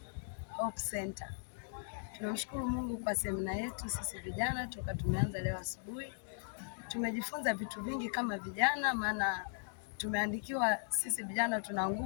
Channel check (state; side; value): silent; right; digital silence